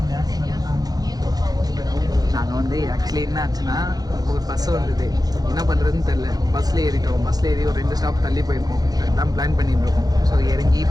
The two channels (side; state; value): left; late; 0.19 ms